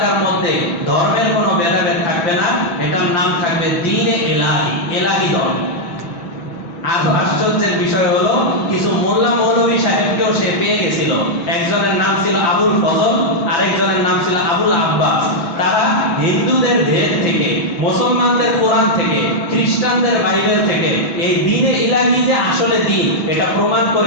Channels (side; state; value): right; late; 6.3 ms